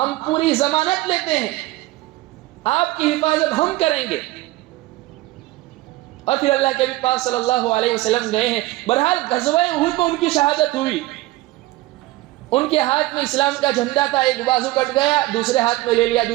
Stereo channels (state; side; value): quieter; left; 18.5 dB